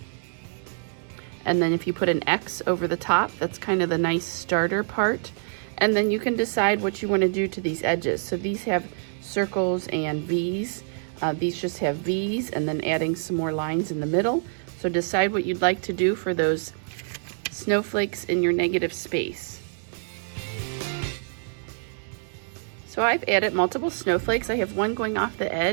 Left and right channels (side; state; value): left; silent; 61 dB below the other